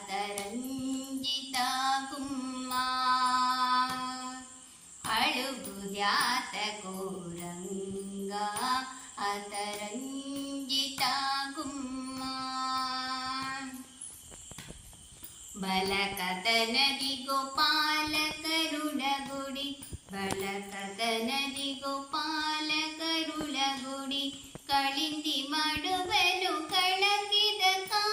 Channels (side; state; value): both; identical; correlation 1.00